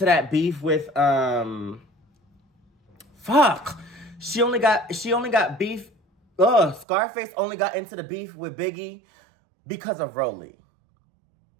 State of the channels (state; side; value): drops out; left; at 6.9 s